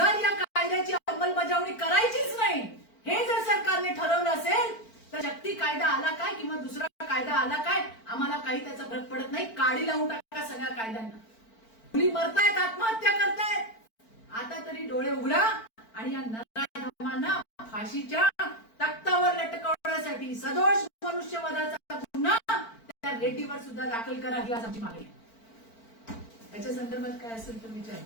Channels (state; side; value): late; right; 4.5 ms